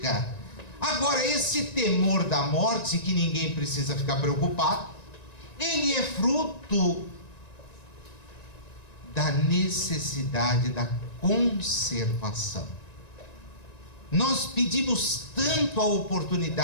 Agora, esse temor da morte, que ninguém precisa ficar preocupado, ele é fruto da necessidade da conservação. Nós pedimos tanto a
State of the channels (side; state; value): right; late; 1.9 ms